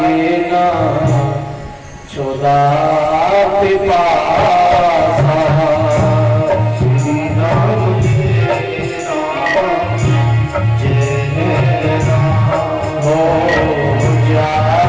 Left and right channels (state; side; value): identical; both; correlation 1.00